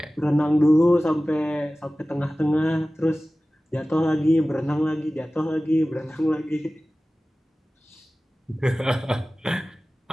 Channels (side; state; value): both; normal; correlation 0.97